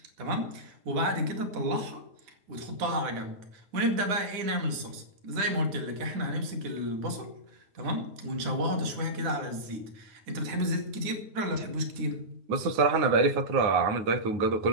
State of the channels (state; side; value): late; left; 9.3 ms